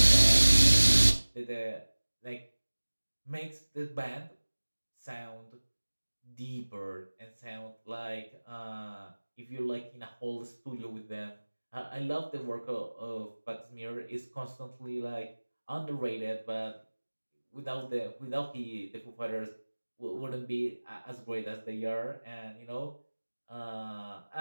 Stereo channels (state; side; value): inverted; both; correlation -1.00